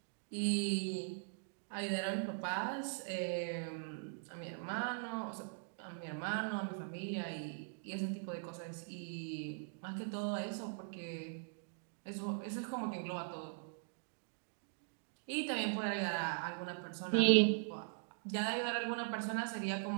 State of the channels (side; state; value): left; silent; digital silence